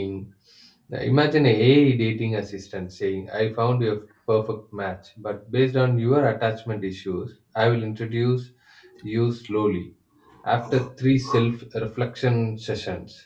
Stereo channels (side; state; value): both; identical; correlation 1.00